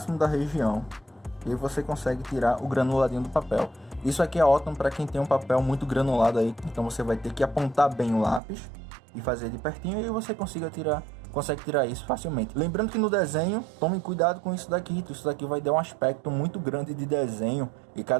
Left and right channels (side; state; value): left; drops out; at 8.4 s